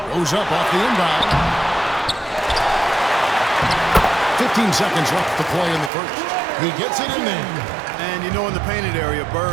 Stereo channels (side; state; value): left; drops out; at 5.9 s